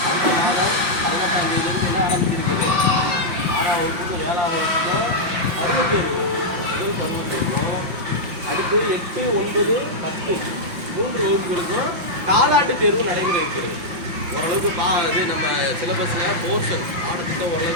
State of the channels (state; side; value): late; left; 5.7 ms